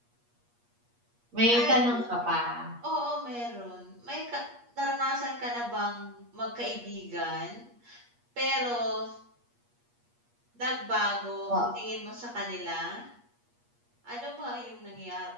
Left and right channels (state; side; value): late; left; 8.4 ms